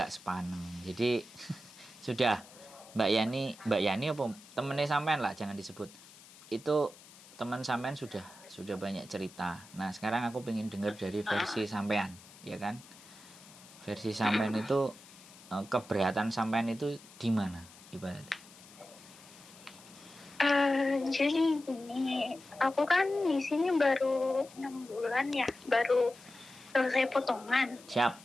sepaneng. Jadi sudah Mbak Yani apa temennya sampean lah, jangan disebut. Itu teman sampean sudah banyak cerita. Nah, sekarang aku pengen dengar dari versi sampean, ya kan? Versi sampean itu keberatan sampean itu di mana ibaratnya? Jadi gini, aku kan di sini baru 6 bulan ya, baru selesai potongan. Siap.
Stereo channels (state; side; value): noise; left; hiss, 21 dB below the sound